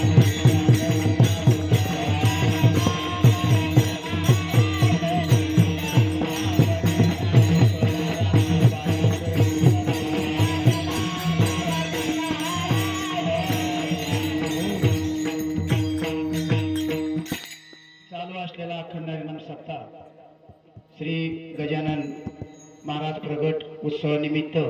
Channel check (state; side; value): identical; both; correlation 1.00